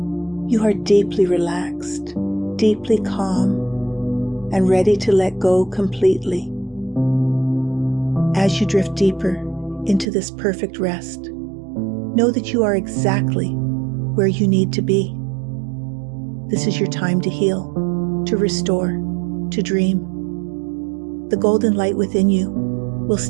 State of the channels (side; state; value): left; drops out; at 10.1 s